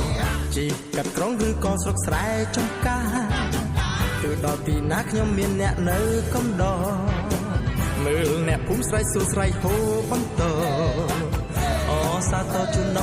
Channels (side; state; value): both; identical; correlation 1.00